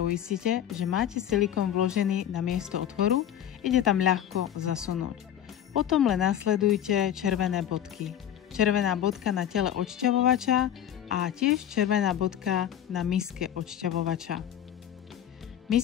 že máte silikón vložený na miesto otvoru, ide tam ľahko zasunúť. Potom len nasledujte červené bodky. Červená bodka na tele odšťavovača a tiež červená bodka na miske odšťavovača.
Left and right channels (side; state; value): right; quieter; 10.7 dB